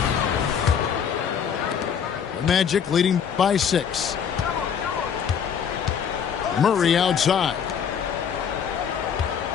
The Magic leading by 6. Murray outside.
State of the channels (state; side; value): quieter; right; 7.7 dB